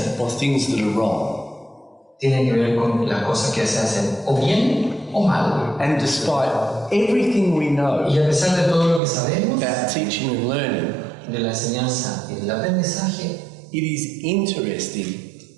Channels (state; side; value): drops out; left; at 9.0 s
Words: or things that are wrong. tiene que ver con las cosas que se hacen o bien o mal. And despite everything we know Y a pesar de todo lo que sabemos about teaching and learning, de la enseñanza y del aprendizaje, it is interesting